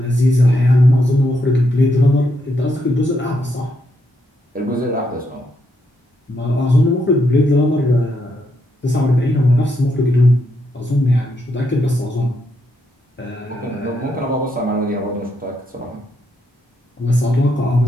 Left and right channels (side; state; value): both; normal; correlation 0.78